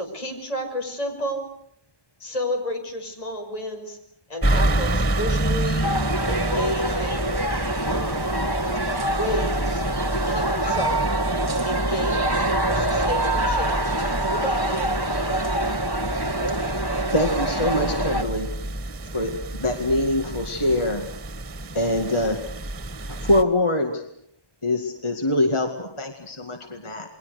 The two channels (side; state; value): right; late; 1.2 ms